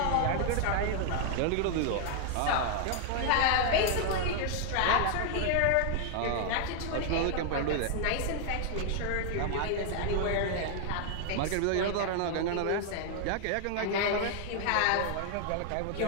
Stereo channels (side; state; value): both; different; correlation 0.00